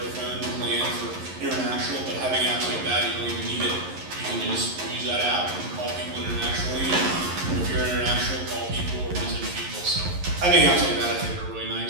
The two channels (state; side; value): late; left; 11 ms